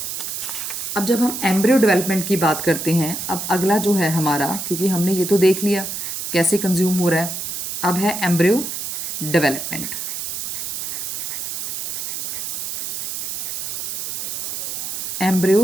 अब जब हम एम्ब्रियो डेवलपमेंट की बात करते हैं, अब अगला जो है हमारा, क्योंकि हमने ये तो देख लिया कैसे कंज्यूम हो रहा है, अब है एम्ब्रियो डेवलपमेंट।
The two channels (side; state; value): right; noise; hiss, 4 dB below the sound